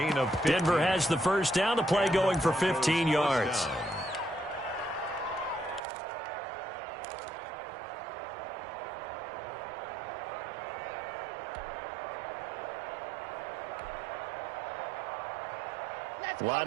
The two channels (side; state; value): left; drops out; at 5.8 s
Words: of 15. Denver has the first down. The play going for 15 yards.